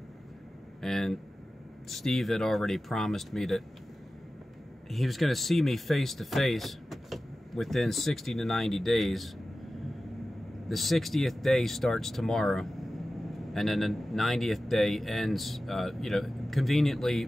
and Steve had already promised me that he was going to see me face to face within 60 to 90 days. The 60th day starts tomorrow, and then the 90th day ends, conveniently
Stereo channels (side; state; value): both; normal; correlation 0.95